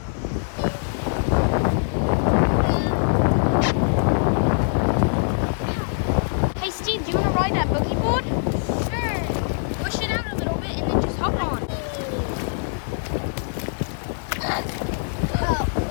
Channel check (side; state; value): right; silent; digital silence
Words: Hey Steve, do you want to ride that boogie board? Sure. Push it out a little bit and then just hop on.